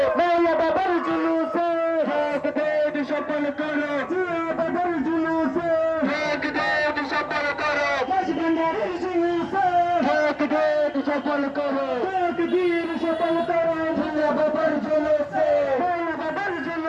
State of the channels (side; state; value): both; identical; correlation 1.00